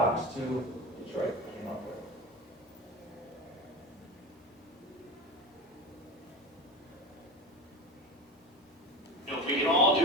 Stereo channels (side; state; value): both; normal; correlation 0.28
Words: 2 Detroit came up with. You know, if we can all